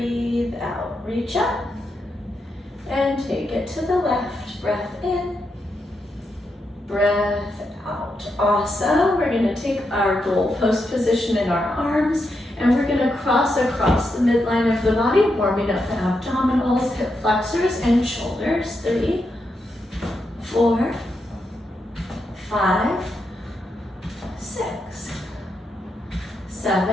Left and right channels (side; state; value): both; normal; correlation 0.84